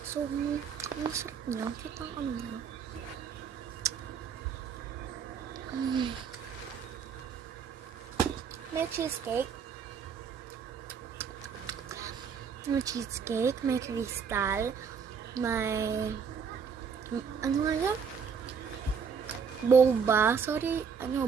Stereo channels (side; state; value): left; quieter; 6.4 dB